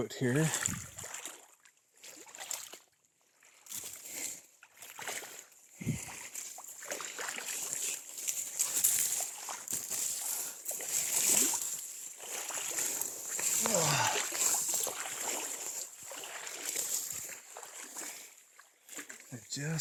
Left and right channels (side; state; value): both; identical; correlation 1.00